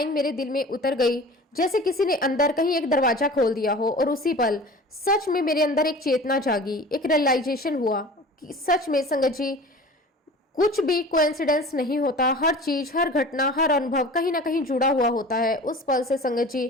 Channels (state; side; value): normal; both; correlation 0.40